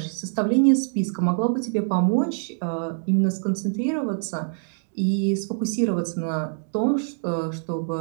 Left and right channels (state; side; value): silent; left; digital silence